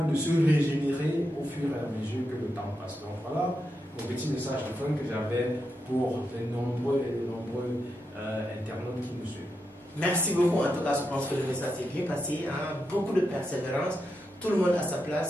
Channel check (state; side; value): normal; both; correlation 0.86